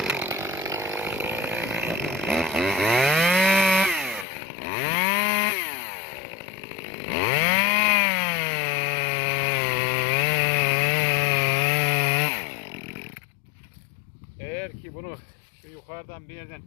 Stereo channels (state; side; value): drops out; right; at 4.2 s